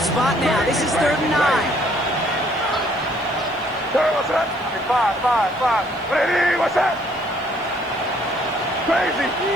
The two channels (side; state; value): right; noise; hiss, 30 dB below the sound